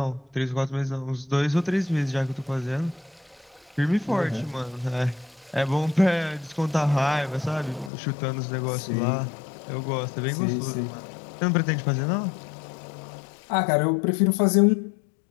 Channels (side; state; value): right; drops out; at 7.9 s